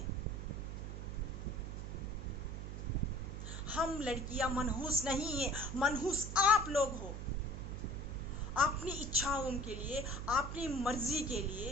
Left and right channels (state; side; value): noise; right; hum, 6 dB below the sound